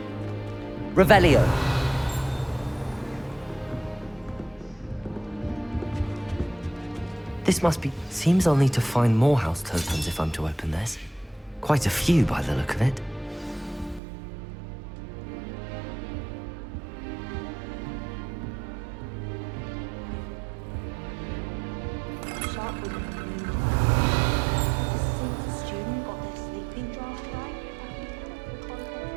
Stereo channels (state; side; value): drops out; left; at 14.0 s